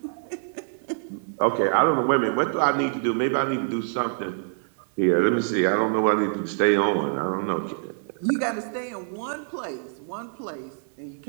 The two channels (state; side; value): silent; left; digital silence